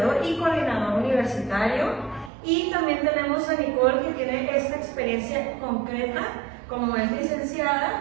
y coordinador universitario, y también tenemos a Nicole, que tiene esta experiencia concreta. Como es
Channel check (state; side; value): drops out; left; at 2.3 s